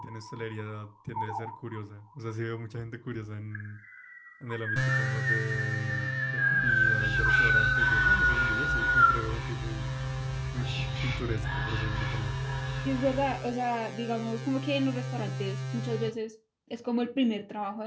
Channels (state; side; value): identical; both; correlation 1.00